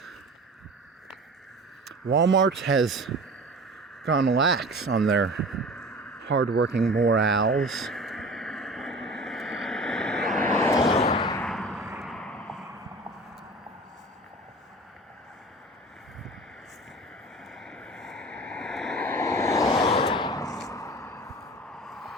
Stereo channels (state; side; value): normal; both; correlation 0.39